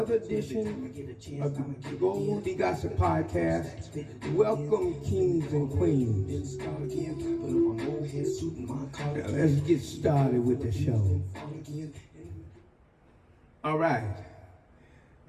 edition of the Goldie Gossip Podcast. Welcome, kings and queens. Now, let's get started with the show. All right,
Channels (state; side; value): identical; both; correlation 1.00